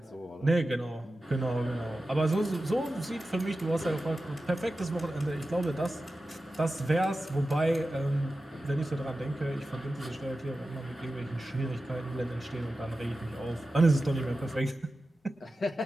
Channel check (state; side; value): normal; both; correlation 0.94